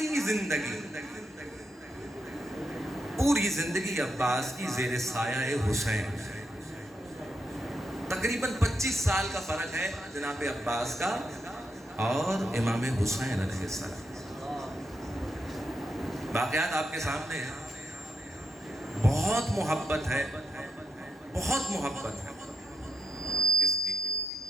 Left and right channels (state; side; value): normal; both; correlation 0.82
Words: زندگی عباس کی زیر سایہ حسین. تقریباً 25 سال کا فرق ہے جناب عباس کا اور امام حسین علیہ السلام. واقعات آپ کے سامنے ہیں. بہت محبت ہے، بہت محبت ہے کس کی؟